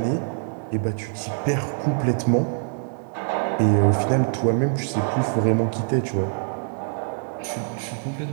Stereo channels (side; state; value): left; silent; digital silence